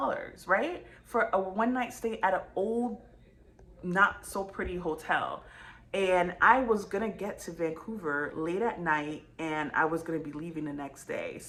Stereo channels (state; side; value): identical; both; correlation 1.00